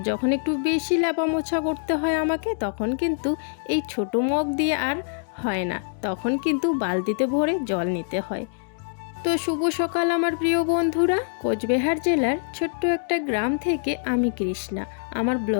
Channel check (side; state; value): right; silent; digital silence